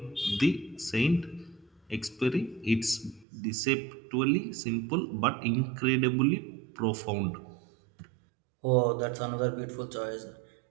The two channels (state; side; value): drops out; left; at 3.2 s